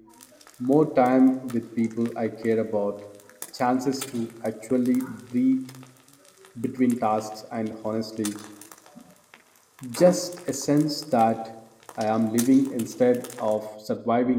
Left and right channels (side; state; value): both; identical; correlation 1.00